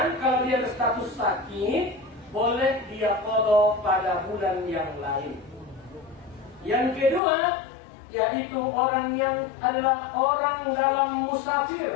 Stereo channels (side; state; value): right; drops out; at 7.2 s